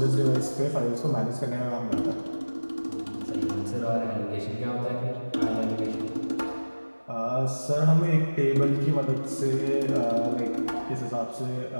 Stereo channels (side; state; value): both; inverted; correlation -1.00